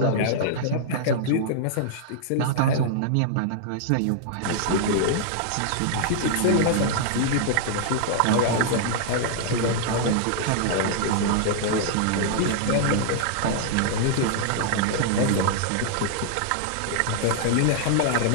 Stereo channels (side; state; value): both; different; correlation -0.01